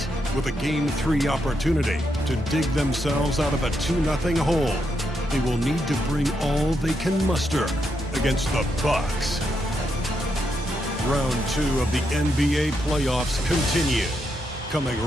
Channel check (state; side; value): normal; both; correlation 0.81